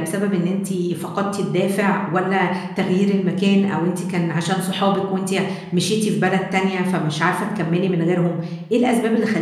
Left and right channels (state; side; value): identical; both; correlation 1.00